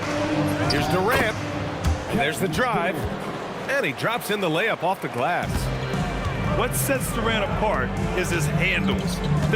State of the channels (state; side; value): identical; both; correlation 1.00